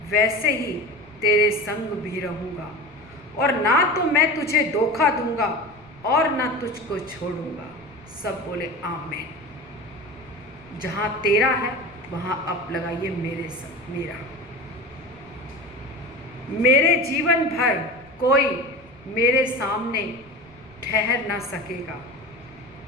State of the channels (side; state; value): left; noise; rumble, 26 dB below the sound